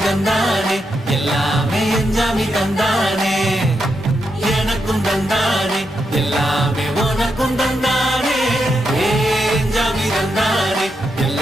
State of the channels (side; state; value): both; normal; correlation 0.83